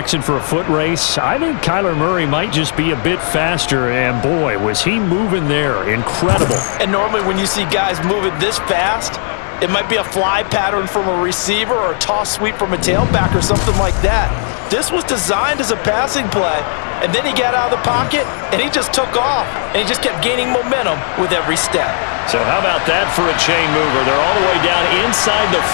for a foot race, I think Kyler Murray might just be a bit faster. And boy, was he moving there. Incredible. And normally when you see guys moving this fast, it might be a fly pattern from a receiver or a toss sweep from a tailback or something like that. This was designed as a passing play, and then he got out of the pocket, and he just took off, and he just kept gaining momentum with every step. So how about that for a chain mover? They're all the way down inside the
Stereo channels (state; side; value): silent; right; 59 dB below the other